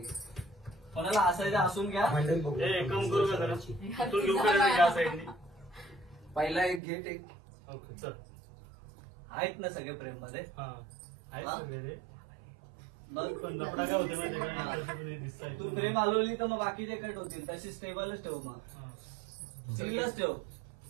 कोणाला हसायचं हसून घ्या. कम करू का जरा. तू घेऊ का साईडने. पहिला एक घे टेक. आहेत ना सगळे प्रेम मध्ये. तू प्रेम हलवली तर मग बाकीचे कट होतील. तशी स्टेबलच ठेव. मग स्टीलच ठेव.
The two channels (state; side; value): drops out; left; at 6.8 s